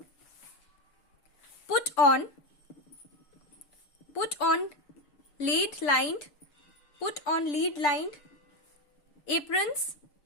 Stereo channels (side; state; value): right; late; 6.9 ms